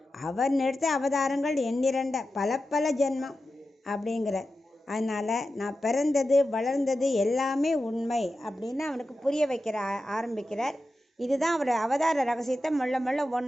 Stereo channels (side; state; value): both; normal; correlation 0.91